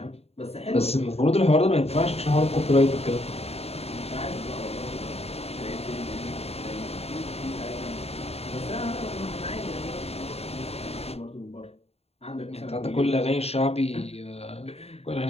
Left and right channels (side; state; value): right; late; 0.30 ms